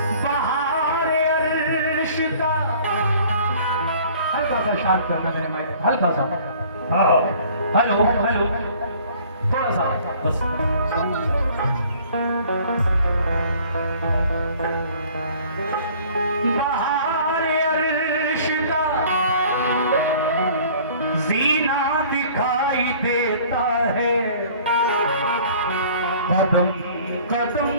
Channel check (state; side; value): inverted; both; correlation -0.52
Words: बहारे अर्श का हल्का सा शार्प करना मेरे माइक, हल्का सा। हेलो हेलो, थोड़ा सा बस। बहारे अर्श का जीना दिखाई देता है, कदम कदम